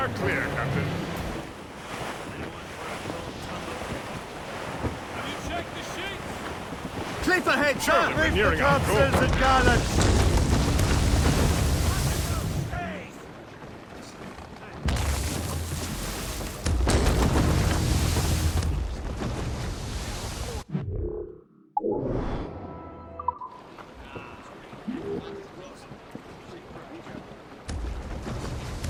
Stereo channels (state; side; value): identical; both; correlation 1.00